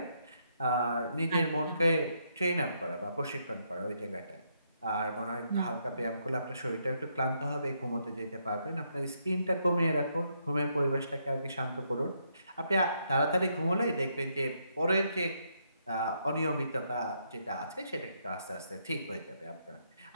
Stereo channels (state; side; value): inverted; both; correlation -0.76